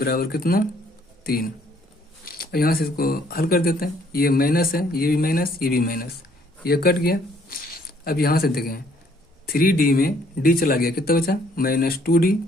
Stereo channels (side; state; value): both; normal; correlation 0.64